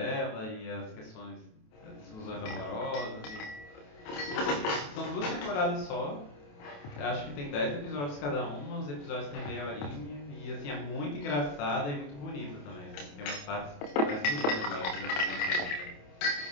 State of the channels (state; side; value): late; right; 28 ms